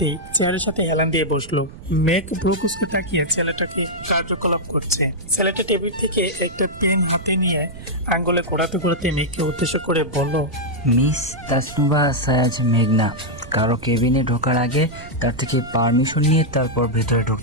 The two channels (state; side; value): noise; right; rumble, 16 dB below the sound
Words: চেয়ারের সাথে হেলান দিয়ে বসলো। মেঘ ব্রুকুসকে তাকিয়ে ছেলেটাকে কার্যকলাপ করছে। ছেলেটা টেবিল থেকে একটা পেন হাতে নিয়ে আঙ্গুলে ঘোরাতে ঘোরাতে মেঘকে উদ্দেশ্য করে বলল, মিস তাসনুবা সায়াজ মেঘনা, কারো কেবিনে ঢোকার আগে তার থেকে পারমিশন নিয়ে তারপর ভেতরে